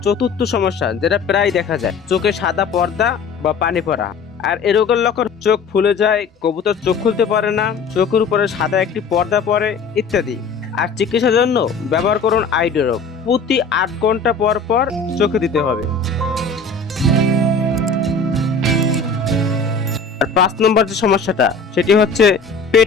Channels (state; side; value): quieter; right; 4.5 dB